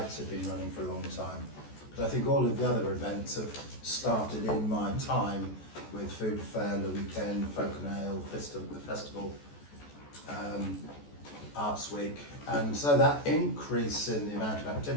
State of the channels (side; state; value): right; late; 14 ms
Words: have been running for a long time. But I think all of the other events have started in my time with Food Fair, the weekend, Folk and Ale, the festival, Arts Week, and so that increase in the amount of